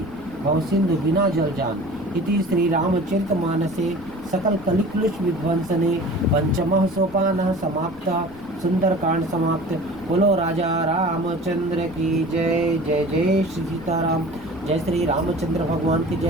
भव सिंधु बिना जल जान। इति श्री रामचरित मानसे सकल कलिक्लुष विध्वंसने पंचमः सोपानः समाप्तः। सुंदरकांड समाप्त। बोलो राजा रामचंद्र की जय। जय जय श्री सीताराम। जय श्री रामचंद्र भगवान की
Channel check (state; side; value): noise; left; rumble, 21 dB below the sound